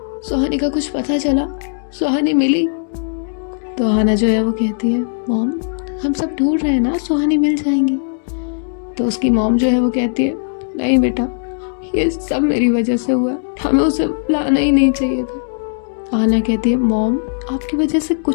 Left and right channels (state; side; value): silent; right; digital silence